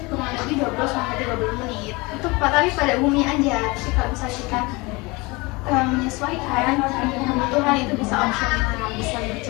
kurang lebih 20 sampai 30 menit. Itu tapi pada umumnya aja. Tapi kalau misalnya kita menyesuaikan kebutuhan itu bisa opsional, bisa lebih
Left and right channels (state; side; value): quieter; right; 24.8 dB